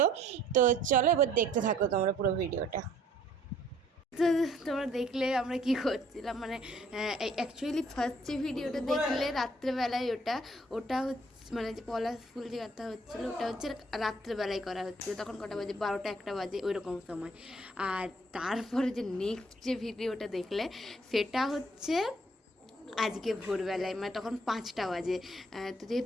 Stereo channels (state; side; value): normal; both; correlation 0.61